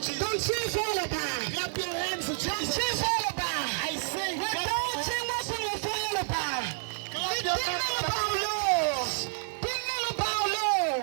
Don't you fall apart. Clap your hands to Don't Jesus. you fall apart. I say clap Without your hands. him, what's in your fall apart? Clap your hands.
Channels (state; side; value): silent; left; 58 dB below the other